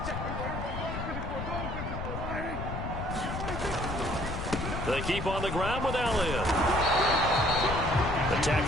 check. 54, They keep on the ground with Elliott. The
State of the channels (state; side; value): noise; left; rumble, 5 dB below the sound